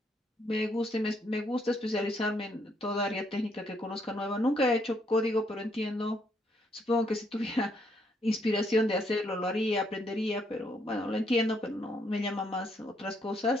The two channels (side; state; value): both; normal; correlation 0.72